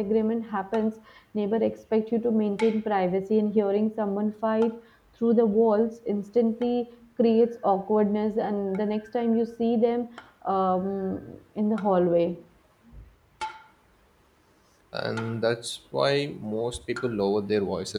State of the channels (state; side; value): identical; both; correlation 1.00